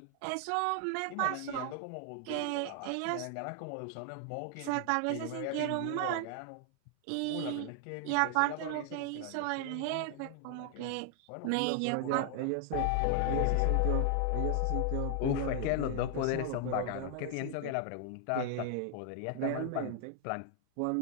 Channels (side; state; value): both; different; correlation 0.00